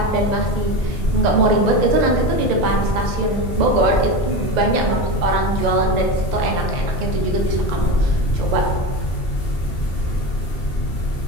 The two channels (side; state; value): both; normal; correlation 0.22